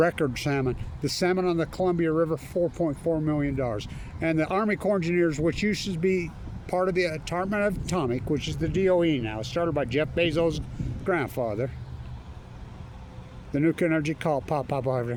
salmon. The salmon on the Columbia River, $4.4 million. And the Army Corps of Engineers, which used to be part of the Department of Atomic, which is the DOE now, started by Jeff Bezos' grandfather. The nuclear energy call, pop,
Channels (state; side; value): identical; both; correlation 1.00